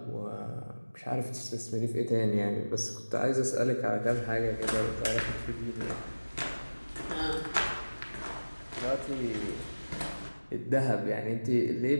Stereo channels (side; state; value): both; inverted; correlation -1.00